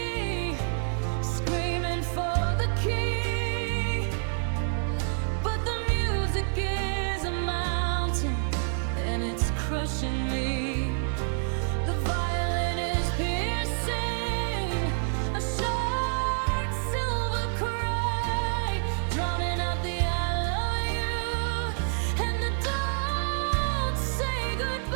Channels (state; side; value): silent; left; digital silence